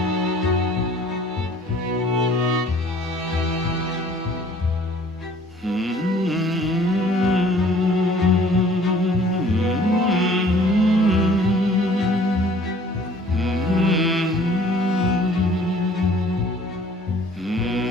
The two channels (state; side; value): normal; both; correlation 0.54